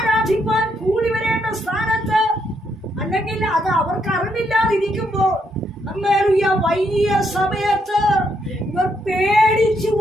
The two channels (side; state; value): both; normal; correlation 0.76